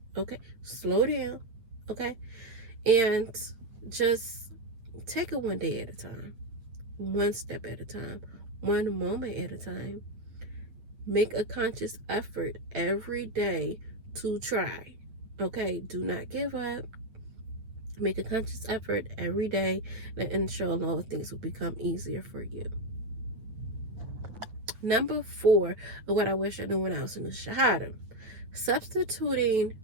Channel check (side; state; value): left; late; 8.7 ms